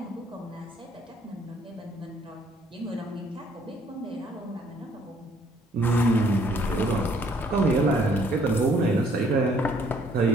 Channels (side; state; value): both; normal; correlation 0.63